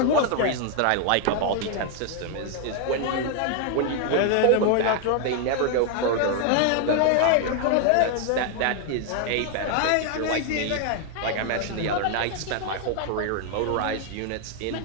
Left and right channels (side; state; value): both; different; correlation 0.00